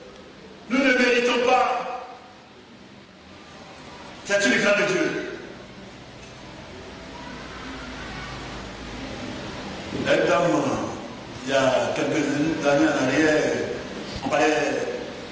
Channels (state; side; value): identical; both; correlation 1.00